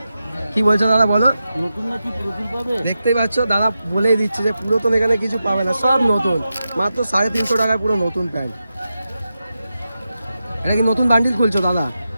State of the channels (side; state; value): both; inverted; correlation -0.90